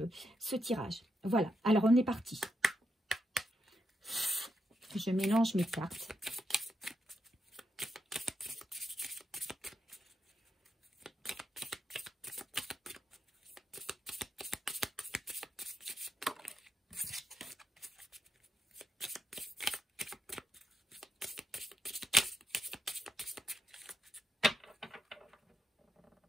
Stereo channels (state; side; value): normal; both; correlation 0.83